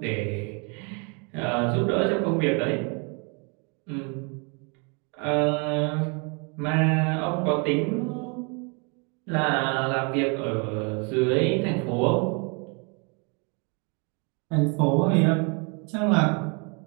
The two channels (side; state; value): left; quieter; 34.2 dB